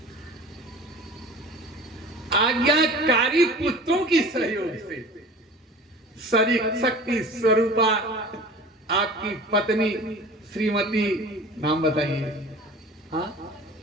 आज्ञाकारी पुत्रों की सहयोग से, शक्ति स्वरूपा आपकी पत्नी श्रीमती, नाम बताइए, हाँ,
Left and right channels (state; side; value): normal; both; correlation 0.41